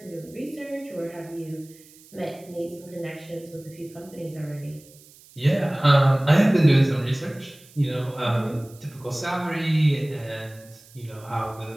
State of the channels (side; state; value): right; noise; hiss, 24 dB below the sound